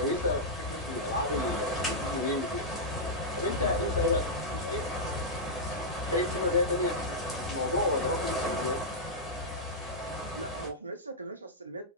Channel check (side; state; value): both; normal; correlation -0.07